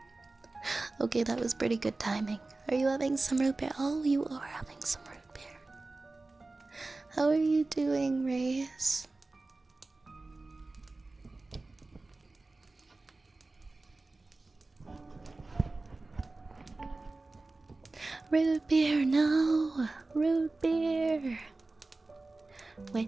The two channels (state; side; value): quieter; left; 3.3 dB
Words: Okay, that was pretty good timing. Are you having some root beer? Oh, you are having some root beer. How are you doing, Rays? Root beer, no! Root beer! When